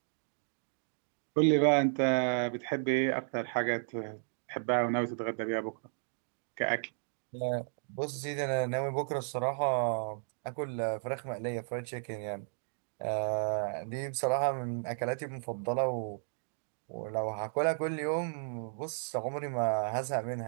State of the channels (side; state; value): left; silent; digital silence